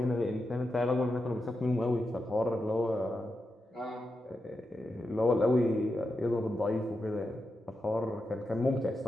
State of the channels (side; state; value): both; normal; correlation 0.88